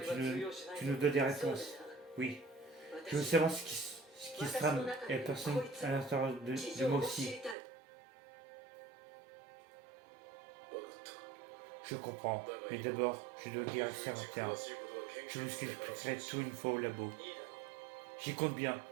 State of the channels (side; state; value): left; drops out; at 7.6 s